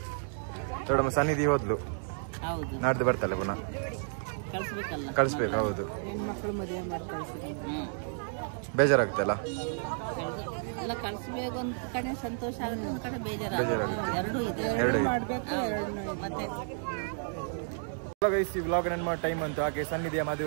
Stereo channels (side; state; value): left; silent; digital silence